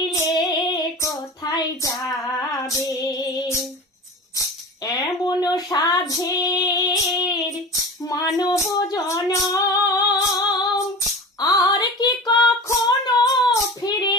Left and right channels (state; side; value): normal; both; correlation 0.33